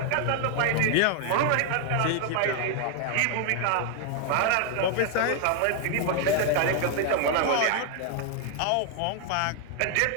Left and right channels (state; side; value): different; both; correlation 0.00